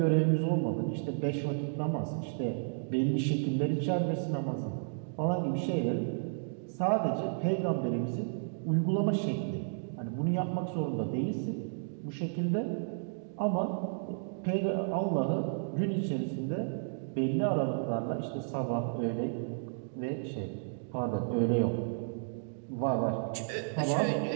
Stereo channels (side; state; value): left; silent; digital silence